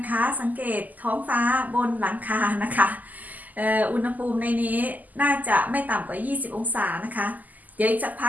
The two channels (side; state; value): left; late; 0.081 ms